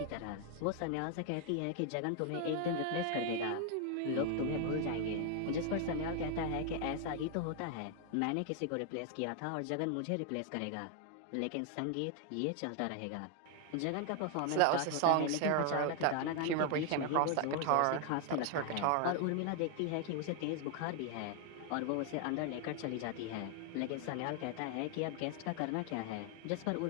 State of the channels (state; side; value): different; both; correlation 0.00